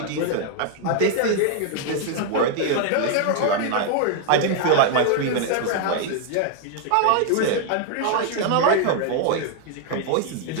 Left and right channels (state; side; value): different; both; correlation 0.00